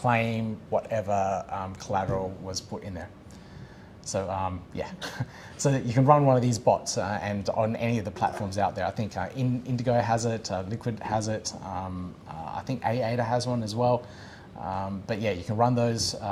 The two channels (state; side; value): identical; both; correlation 1.00